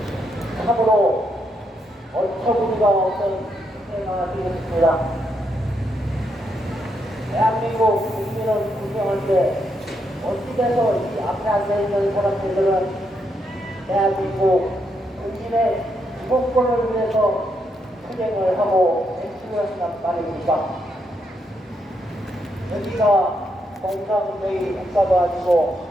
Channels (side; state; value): both; normal; correlation 0.79